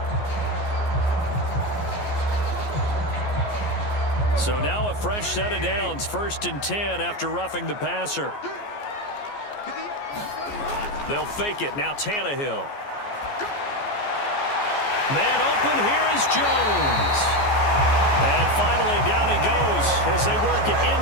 So now a fresh set of downs, 1st and 10 after roughing the passer. They'll fake it. Now Tannehill. Man open. Here is Jones. And finally, down he goes as they work it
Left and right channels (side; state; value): right; late; 14 ms